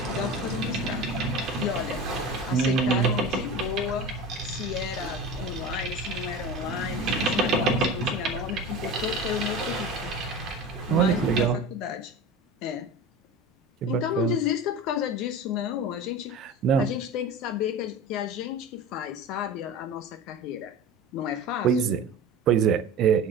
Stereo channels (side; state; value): both; normal; correlation 0.31